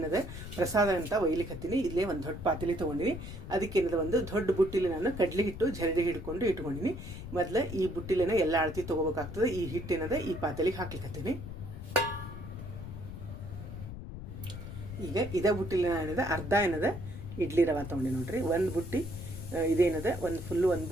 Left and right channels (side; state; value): left; noise; rumble, 10 dB below the sound